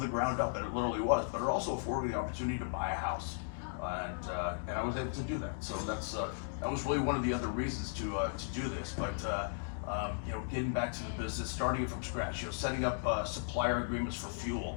ground up, and it literally was. But it also afforded me the opportunity to buy a house, and I was able to do that. So that was really one of the other reasons to do this. But getting back to the business, starting it from scratch, setting up supplier agreements for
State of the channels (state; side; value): silent; right; digital silence